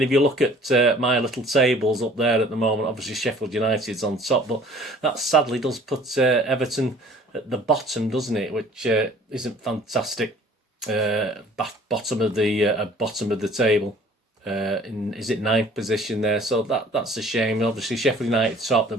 if you look at my little tables up there at the moment, obviously Sheffield United's on top, but that sadly does put Everton at the bottom, doesn't it? Which isn't fantastic. Bottom of the table. Is it 9th position there? So that's a shame. Obviously Sheffield United top, the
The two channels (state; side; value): normal; both; correlation 0.51